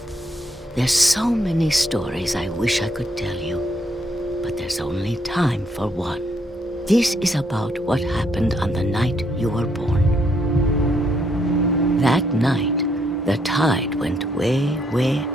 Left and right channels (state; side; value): normal; both; correlation 0.72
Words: there's so many stories I wish I could tell you, but there's only time for one. This is about what happened on the night you were born. That night, the tide went way, way